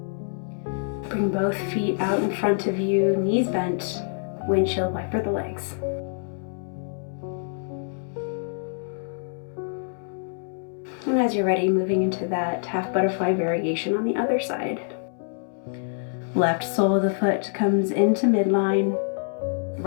Bring both feet out in front of you, knees bent, windshield wiper the legs. And as you're ready, moving into that half butterfly variation on the other side. Left sole of the foot comes into midline,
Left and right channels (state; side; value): silent; right; 61 dB below the other